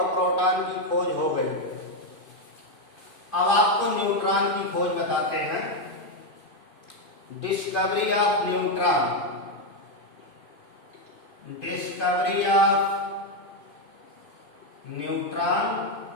प्रोटॉन की खोज हो गई। अब आपको न्यूट्रॉन की खोज बताते हैं। Discovery of neutron. Discovery of neutron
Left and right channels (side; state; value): right; late; 2.5 ms